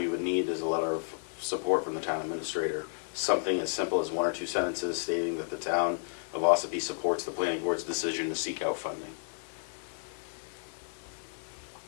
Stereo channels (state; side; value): silent; right; 56 dB below the other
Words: would need is a letter of support from the town administrator. Something as simple as 1 or 2 sentences stating that the town of Ossipee supports the planning board's decision to seek out funding.